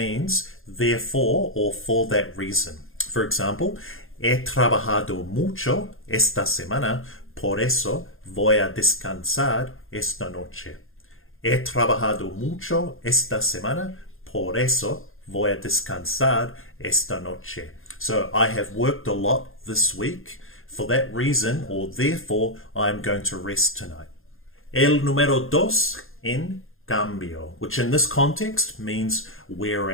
therefore or for that reason. For example, he trabajado mucho esta semana, por eso voy a descansar esta noche. He trabajado mucho esta semana, por eso voy a descansar esta noche. So I have worked a lot this week. For that reason, or therefore, I'm going to rest tonight. El número dos, en cambio, which in this context means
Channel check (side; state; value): right; late; 0.60 ms